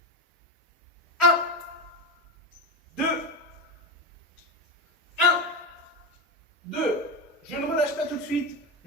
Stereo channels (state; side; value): normal; both; correlation 0.17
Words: 1, 2, 1, 2. Je ne relâche pas tout de suite.